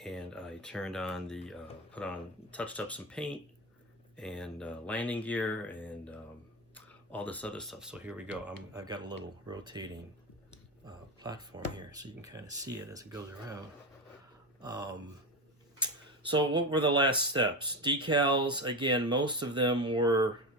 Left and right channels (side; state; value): both; normal; correlation 0.19